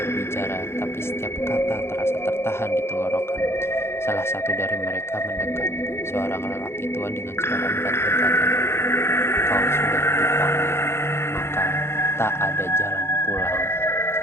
tapi setiap kata terasa tertahan di tenggorokan. Salah satu dari mereka mendekat. Seorang lelaki tua dengan suara berat berkata, "Kau sudah dipanggil, maka tak ada jalan pulang."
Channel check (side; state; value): right; late; 0.12 ms